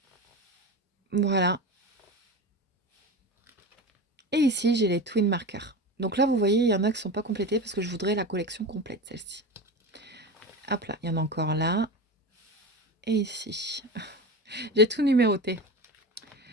Voilà. Et ici, j'ai les Twin Marker. Donc là, vous voyez, il y en a qui ne sont pas complétés parce que je voudrais la collection complète, celle-ci. Hop là, il y en a encore là. Et ici. J'ai tout numéroté.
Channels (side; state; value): both; normal; correlation 0.26